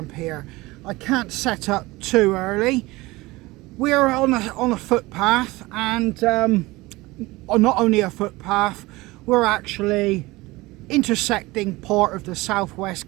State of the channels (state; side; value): quieter; left; 21.0 dB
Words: here. I can't set up too early. We're on a footpath, and not only a footpath, we're actually intersecting part of the